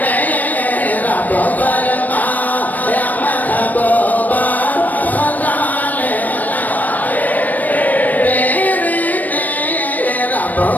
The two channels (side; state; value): right; late; 0.082 ms